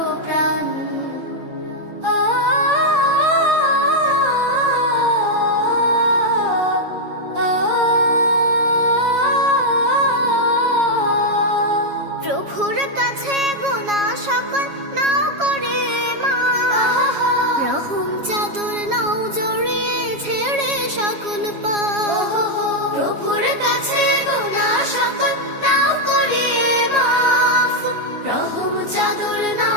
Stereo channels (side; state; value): left; late; 7.3 ms